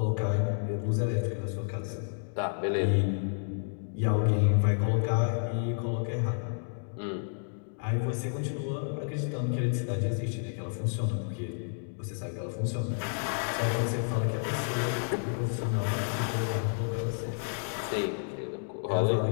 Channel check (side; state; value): right; silent; digital silence